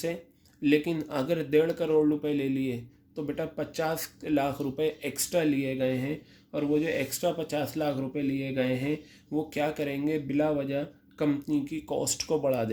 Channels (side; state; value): both; identical; correlation 1.00